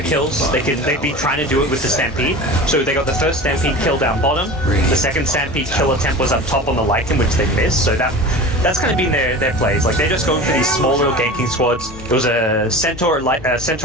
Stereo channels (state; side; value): normal; both; correlation 0.34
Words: kills. They'd be trying to do it with the Stampede. So they got the first Stampede kill down bottom. The second Stampede kill attempt was up top on the Lycan, which they missed. So that's kind of been their plays. Like, they're just going for these small little ganking squads. There was a Centaur